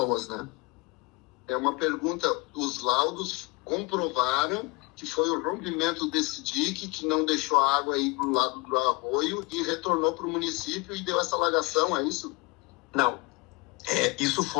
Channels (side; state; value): right; quieter; 25.3 dB